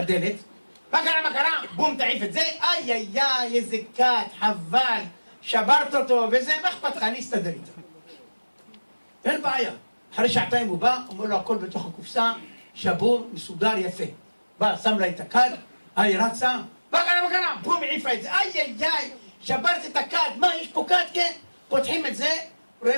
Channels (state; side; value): inverted; both; correlation -1.00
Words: מה קרה? בום, תעיף את זה, איי, איזה כת, חבל, שברת אותו, וזה, מה אכפת לך? אני אסתדר איתה. אין בעיה. אחרי שעתיים הוא בא, אומר לו הכל בתוך הקופסה, שבור, מסודר, יפה. בא, שם לה את הכד, היא רצה, מה קרה? בום, העיפה את זה, איי, שברת את הכד, מה, יש פה כד, כן? פותחים את זה,